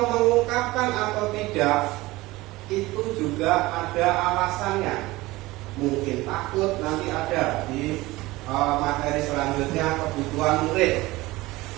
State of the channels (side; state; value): left; quieter; 19.7 dB